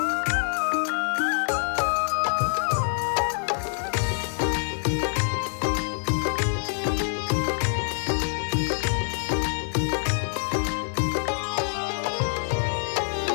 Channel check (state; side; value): silent; right; 61 dB below the other